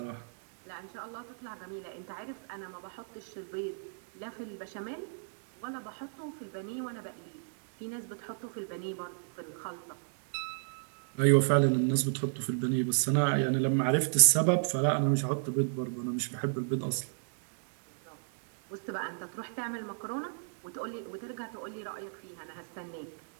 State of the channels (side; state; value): left; silent; digital silence